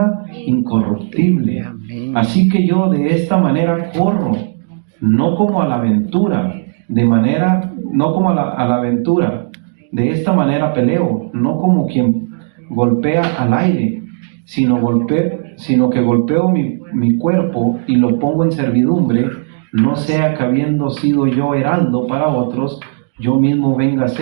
incorruptible. Así que yo de esta manera corro, no como a la aventura, de esta manera peleo, no como quien golpea al aire, sino que golpeo mi cuerpo y lo pongo en servidumbre, no sea que habiendo sido yo heraldo para otros, yo mismo venga a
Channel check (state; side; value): silent; left; digital silence